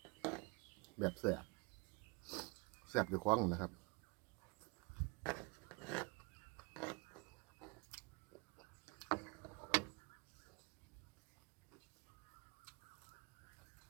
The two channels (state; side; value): quieter; left; 28.7 dB